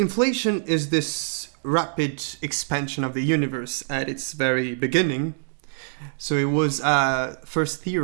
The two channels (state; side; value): silent; left; 62 dB below the other